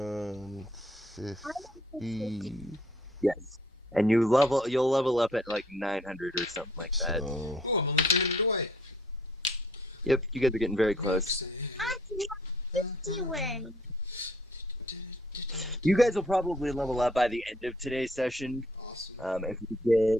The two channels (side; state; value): both; normal; correlation 0.61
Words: Yes. And you'll level up at like 900 or something like that. So, Oh, I'm only 300 away. Yep, you guys are getting very close. I can have 50 win. You guys will probably level up by the end of today's session. Awesome.